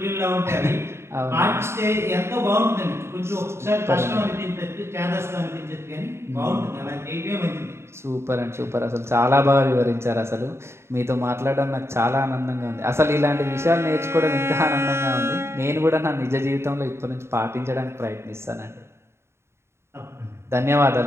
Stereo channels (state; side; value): late; left; 0.13 ms